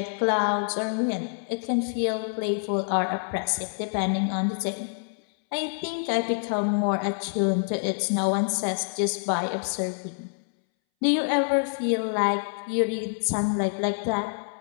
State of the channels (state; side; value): silent; right; 60 dB below the other